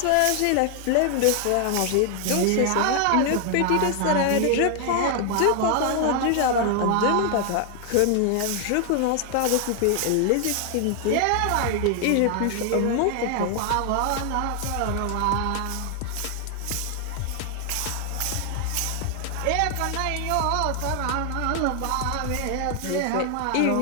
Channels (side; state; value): both; different; correlation 0.00